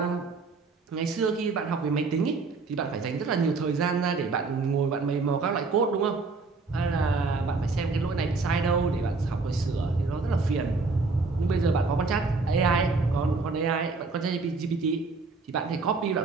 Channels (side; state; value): left; quieter; 4.1 dB